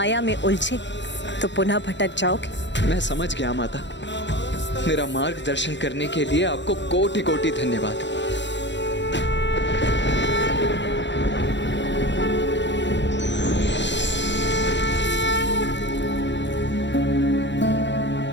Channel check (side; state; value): right; late; 0.53 ms